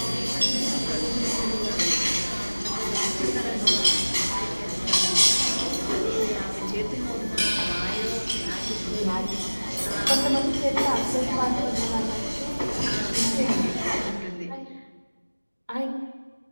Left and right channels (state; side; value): inverted; both; correlation -1.00